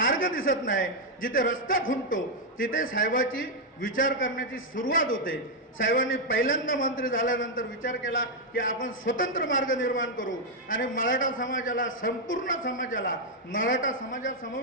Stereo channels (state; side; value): normal; both; correlation 0.00